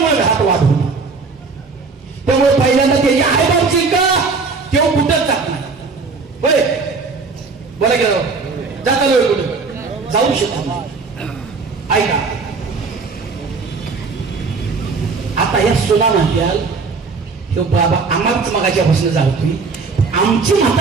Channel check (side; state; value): left; quieter; 4.5 dB